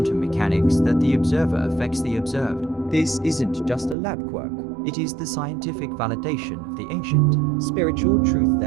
mechanics that the observer affects the observed. This isn't just a lab quirk. It is the scientific validation of the ancient. Spiritual truth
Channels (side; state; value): left; drops out; at 4.0 s